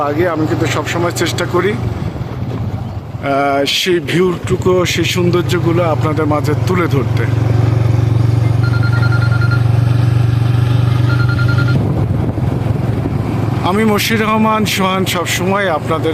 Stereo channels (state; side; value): identical; both; correlation 1.00